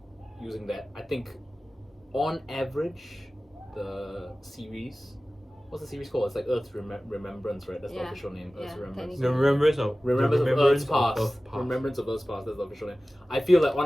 using that, I think on average, the series, what's the series called? It's like Earth's Remembrance, right? That's the Yeah. official name. Earth's Yeah, Remembrance. The remembrance of Remembrance of Earth's of past. Earth's past. Remembrance of Earth's past. That's the official name. I feel like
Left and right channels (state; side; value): normal; both; correlation 0.97